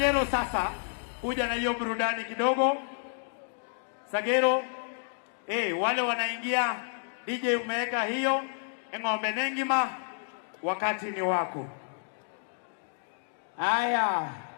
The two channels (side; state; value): right; silent; digital silence